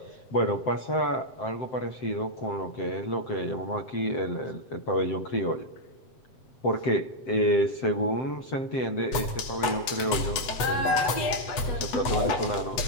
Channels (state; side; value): late; right; 8.1 ms